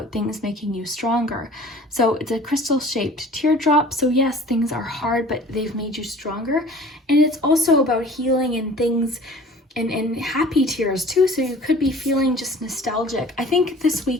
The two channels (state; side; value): normal; both; correlation 0.46